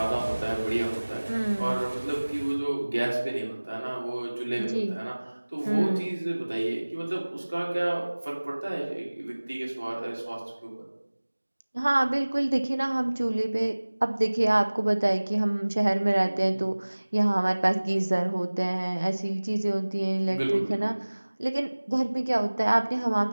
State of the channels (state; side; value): inverted; both; correlation -1.00